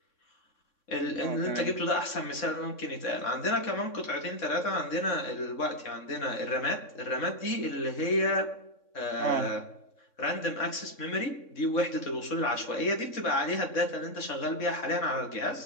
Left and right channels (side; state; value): right; late; 3.6 ms